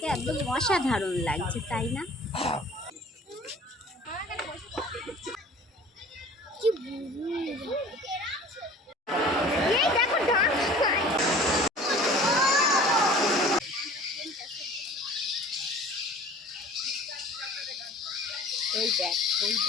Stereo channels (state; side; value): normal; both; correlation 0.46